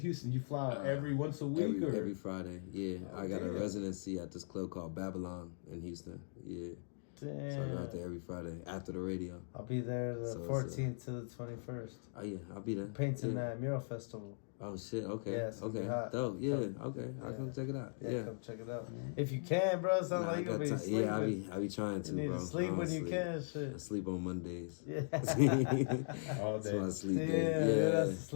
You fly out every once a week, or every Friday? Yeah, I got a residency at this club called Babylon in Houston. Yeah, damn. So I go out there every Friday after the radio. I'll be there the 14th to the 21st. Oh yeah, I'll be there. Painting that mural festival. Oh shit! Okay. Yeah, okay. Dope. Yeah. Okay. I'll come check it out. Yeah. Come check it out. If you can, bro. Sounds like you'll be sleeping. Yeah, I be trying to, you need bro. To sleep when you can. Shit. I sleep on Mondays. Yeah. All day. That's my sleep day. Yeah, that's a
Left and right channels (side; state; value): right; silent; digital silence